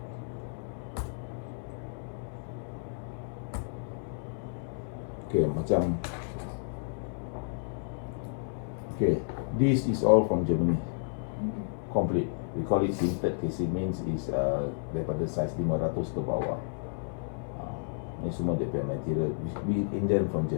Okay, macam okay, this is all from Germany. Complete. We call it tinted casing, means is daripada size 500 ke bawah. Ni semua dia punya material. We Indian from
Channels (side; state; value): right; silent; 57 dB below the other